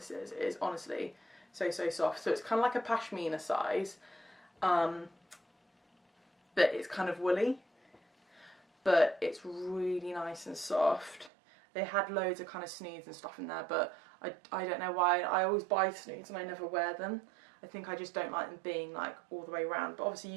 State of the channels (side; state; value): left; drops out; at 11.3 s